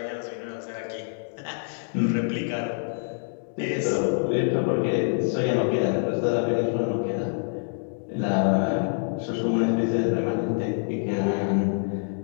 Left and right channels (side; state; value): right; silent; digital silence